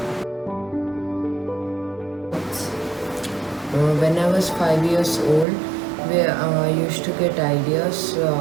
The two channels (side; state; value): left; drops out; at 5.5 s